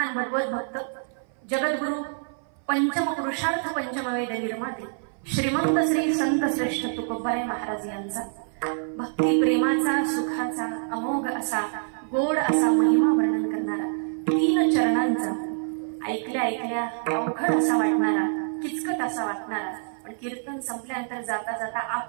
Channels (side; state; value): left; silent; 58 dB below the other